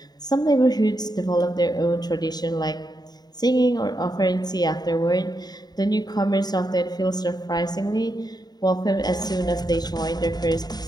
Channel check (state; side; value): late; right; 0.20 ms